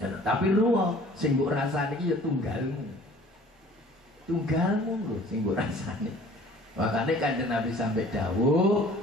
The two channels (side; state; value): both; normal; correlation 0.50